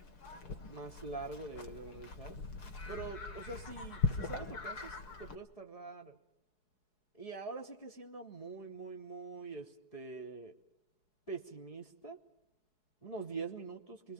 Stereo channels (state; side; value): late; right; 4.7 ms